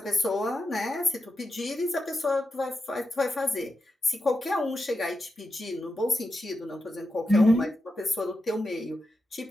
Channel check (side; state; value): both; normal; correlation 0.87